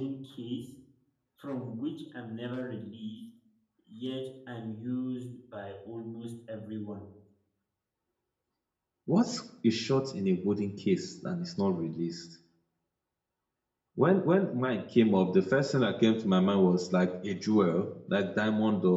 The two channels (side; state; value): both; identical; correlation 1.00